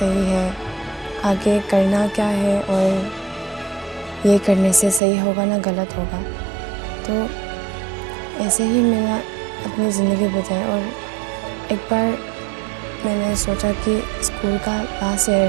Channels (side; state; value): left; drops out; at 5.0 s